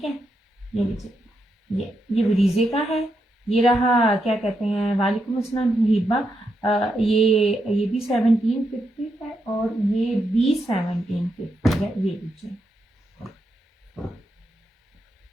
है। ये लीजिए, ये ब्रीजे का है। ये रहा, क्या कहते हैं, वालेकुम अस्सलाम हिबा, ये भी 1750 है और ये भी 1750 है। ये लीजिए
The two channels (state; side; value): normal; both; correlation 0.83